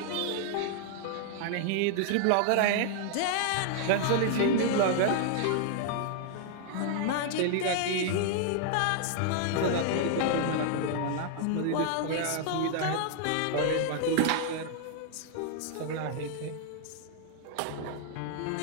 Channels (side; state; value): both; different; correlation 0.00